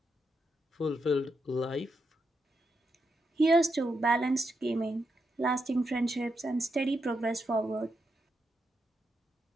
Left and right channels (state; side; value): normal; both; correlation 0.83